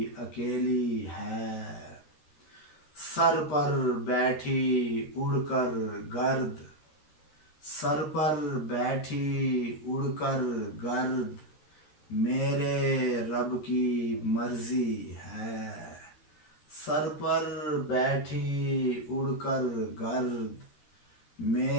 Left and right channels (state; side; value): late; right; 13 ms